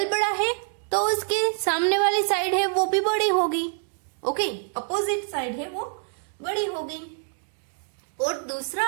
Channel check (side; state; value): left; silent; 57 dB below the other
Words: बड़ा है तो उसके सामने वाली साइड है वो भी बड़ी होगी। ओके, अपोजिट साइड है वो बड़ी होगी। और दूसरा